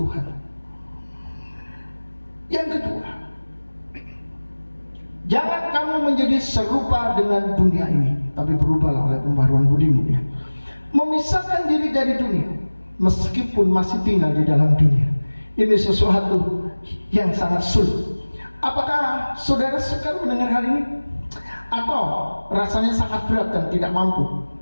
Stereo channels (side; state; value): both; inverted; correlation -1.00